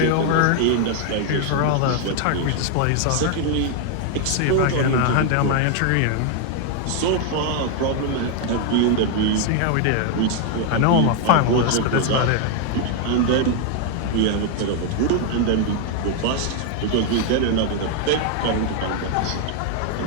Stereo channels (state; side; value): different; both; correlation 0.00